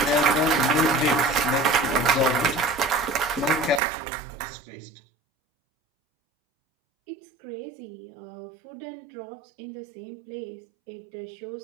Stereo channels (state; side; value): drops out; left; at 3.8 s